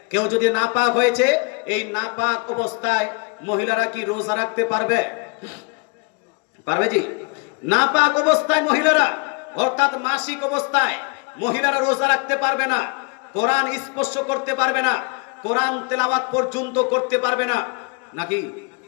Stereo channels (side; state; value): right; quieter; 32.5 dB